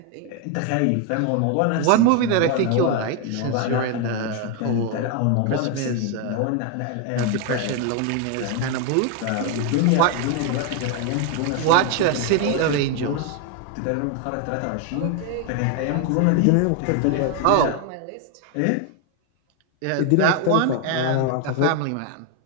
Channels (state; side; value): different; both; correlation 0.01